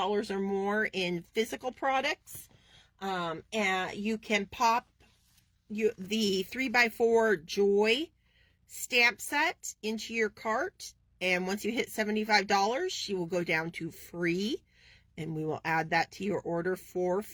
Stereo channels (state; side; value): identical; both; correlation 1.00